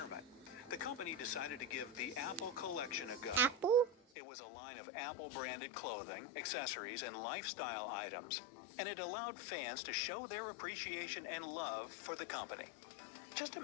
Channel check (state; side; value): drops out; right; at 4.0 s